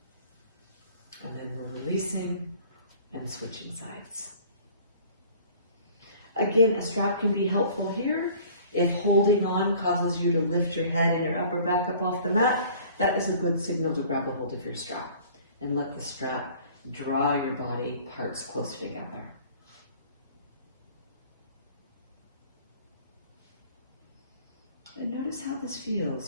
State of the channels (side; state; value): both; inverted; correlation -0.50